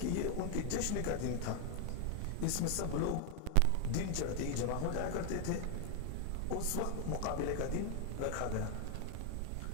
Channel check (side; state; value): both; different; correlation 0.01